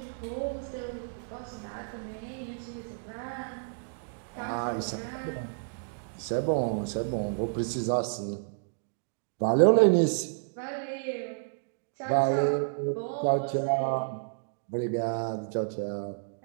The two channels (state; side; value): silent; left; digital silence